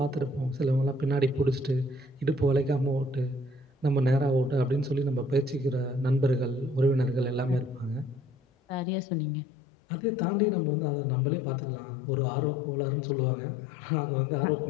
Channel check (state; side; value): drops out; right; at 8.8 s